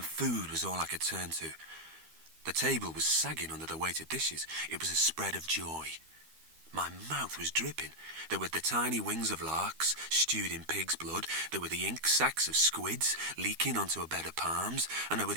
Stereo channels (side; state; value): left; late; 12 ms